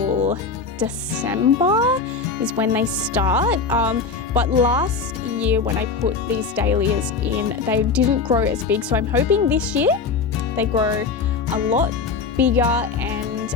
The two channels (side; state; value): right; quieter; 4.8 dB